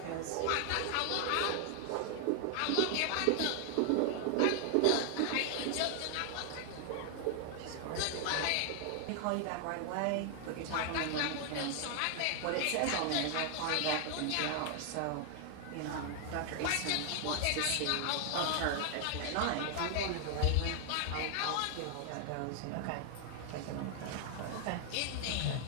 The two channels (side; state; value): both; different; correlation 0.00